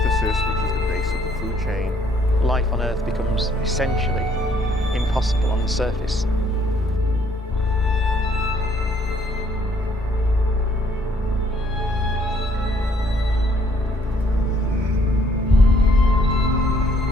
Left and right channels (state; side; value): normal; both; correlation 0.65